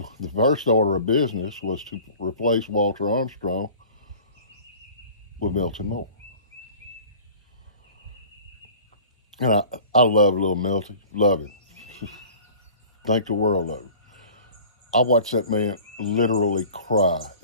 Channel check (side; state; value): both; inverted; correlation -0.45